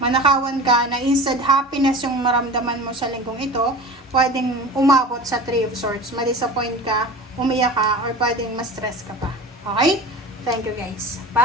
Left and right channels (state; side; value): normal; both; correlation 0.35